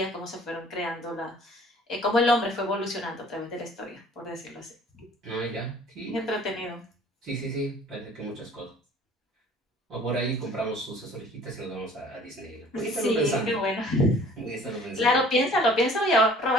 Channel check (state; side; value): normal; both; correlation 0.51